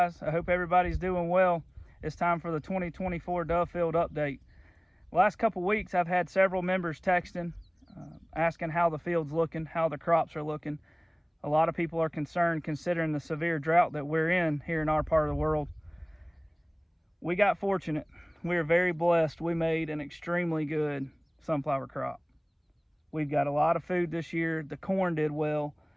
I hope everybody's doing well. It's time for the 2024 Dove Field update. Last couple weeks I've had several members texting, asking how the field's looking, how the crops are looking. A lot of people are concerned considering the severe drought that we're in here in our part of the world. We got fortunate. We are very blessed. We made an extremely good sunflower crop. We've got a lot of food this year. The corn did well,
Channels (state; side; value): identical; both; correlation 1.00